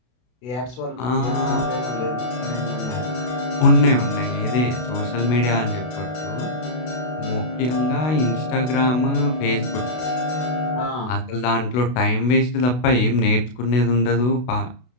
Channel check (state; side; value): late; right; 32 ms